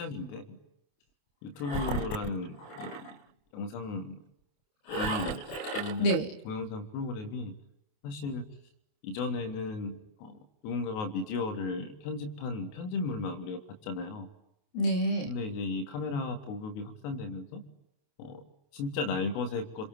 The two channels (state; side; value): late; right; 28 ms